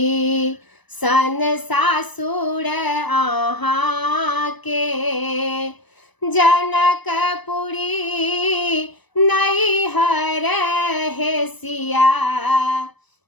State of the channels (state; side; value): late; right; 1.0 ms